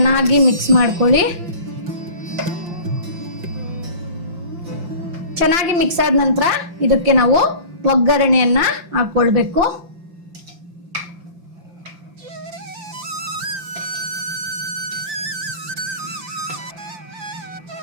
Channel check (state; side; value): late; left; 5.7 ms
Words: ಮಿಕ್ಸ್ ಮಾಡ್ಕೊಳ್ಳಿ. ಚೆನ್ನಾಗಿ ಮಿಕ್ಸ್ ಆದ ನಂತರ ಇದಕ್ಕೆ ನಾವು ಒಗ್ಗರಣೆಯನ್ನ ಹಾಕೊಳ್ಬೇಕು.